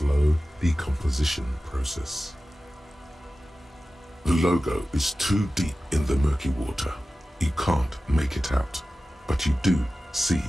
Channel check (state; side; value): normal; both; correlation 0.95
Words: decomposition process. The logo is too deep in the murky water. You can't make it out, but you do see